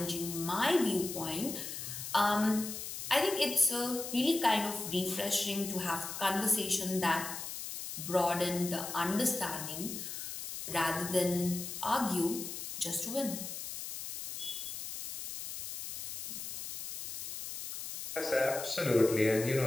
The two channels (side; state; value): left; noise; hiss, 7 dB below the sound